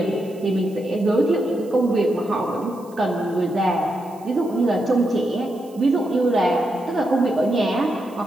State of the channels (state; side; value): noise; right; hiss, 27 dB below the sound